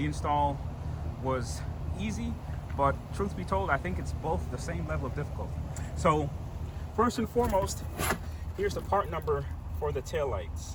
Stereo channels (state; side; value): identical; both; correlation 1.00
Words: install was easy. But truth be told, I think it's both the same level of difficulty. So first and foremost, here's the part number for the